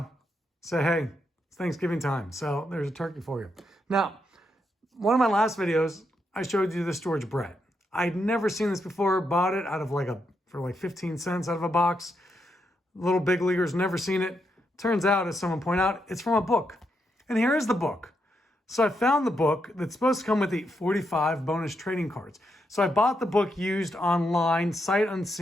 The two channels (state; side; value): normal; both; correlation 0.81